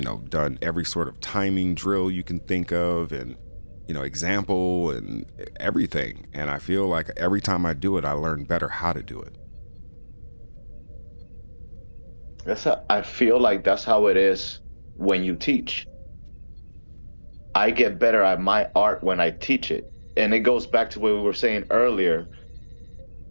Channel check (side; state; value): both; inverted; correlation -1.00